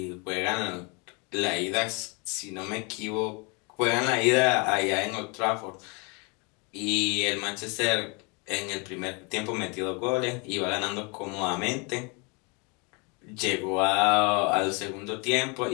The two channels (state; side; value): quieter; right; 31.6 dB